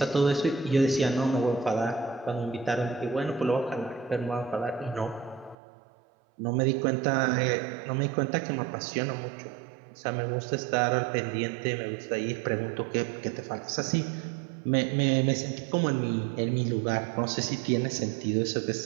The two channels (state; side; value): drops out; left; at 5.6 s